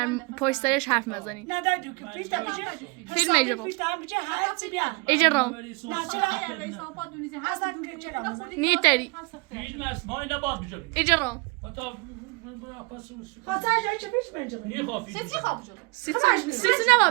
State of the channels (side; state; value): left; quieter; 28.0 dB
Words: پشترش حرف مزنی نه در دوکه فیلتا بشه فیلم ایجا ایجا رو نیتری فیلم است ما اینا باید بجرم ایجا رو خاطر جایی چه پیش بنجرم نیه خواه سیتی خواب جلو سیسی